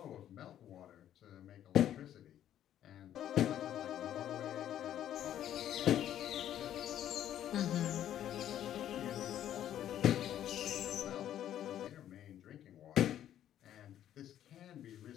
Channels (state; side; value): quieter; right; 11.1 dB